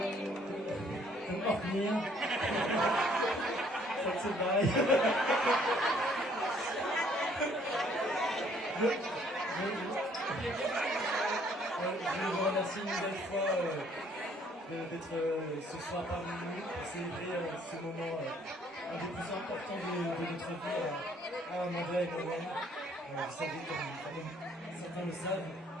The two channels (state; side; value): normal; both; correlation 0.62